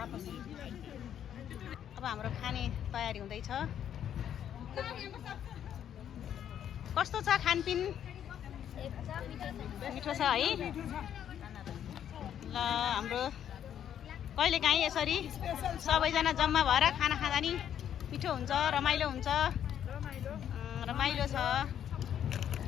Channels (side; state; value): right; quieter; 9.7 dB